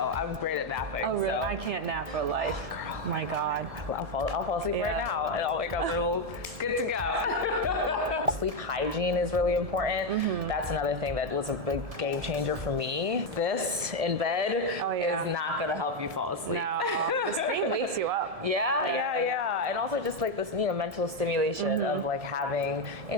I'm great at napping. Oh really? So. I can't nap for life. My God. I'll fall asleep right now and I'll wake up and we'll good to go. Sleep hygiene is really important. That's another thing that was a big game changer for me. This in bed is not gonna help you fall asleep. No, the screen wakes you up. Yeah. And also just like this, mental stimulation of like having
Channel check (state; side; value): late; left; 1.7 ms